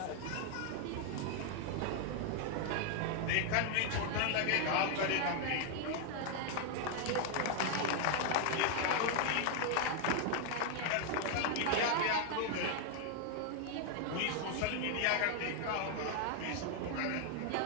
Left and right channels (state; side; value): different; both; correlation 0.00